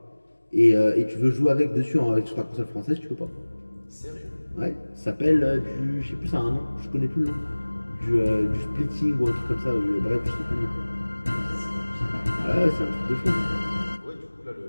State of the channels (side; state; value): both; inverted; correlation -1.00